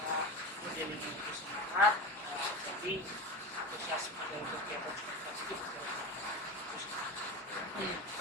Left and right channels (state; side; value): normal; both; correlation 0.24